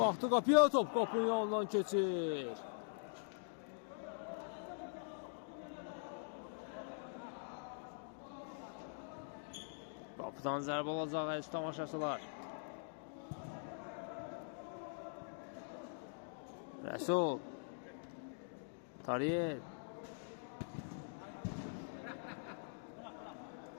qapıya, top qapının yanından keçir. Qapıdan zərbə olacaq əziz tamaşaçılar. Rəsul. Tariyer.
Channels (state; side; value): silent; right; digital silence